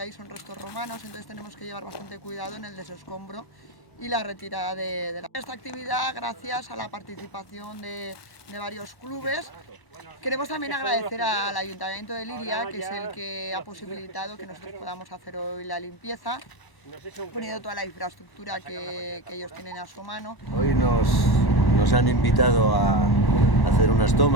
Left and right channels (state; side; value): late; right; 1.1 ms